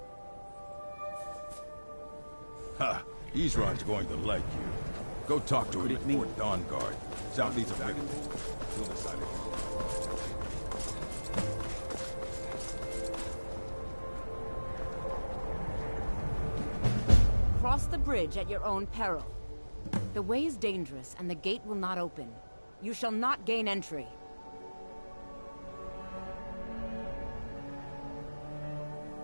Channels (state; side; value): inverted; both; correlation -1.00